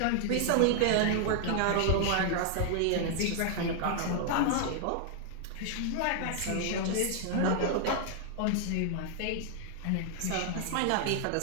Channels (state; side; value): different; both; correlation 0.00